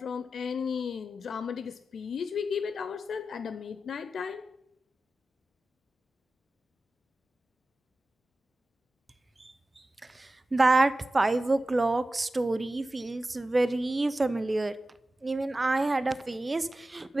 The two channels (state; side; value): normal; both; correlation 0.94